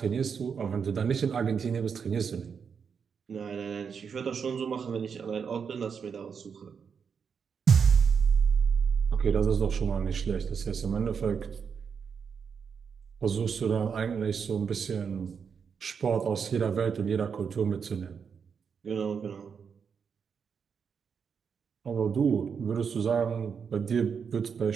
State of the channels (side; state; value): left; quieter; 6.5 dB